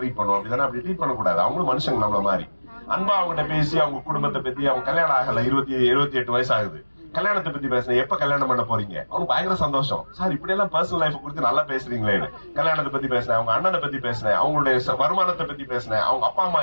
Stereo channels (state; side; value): inverted; both; correlation -1.00